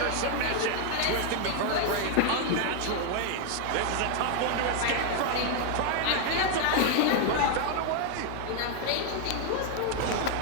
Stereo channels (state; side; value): different; both; correlation 0.00